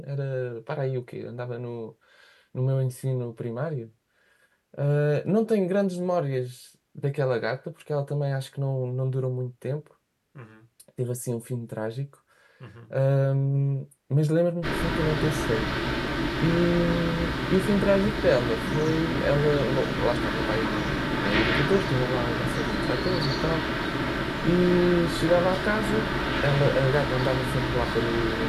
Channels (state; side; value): identical; both; correlation 1.00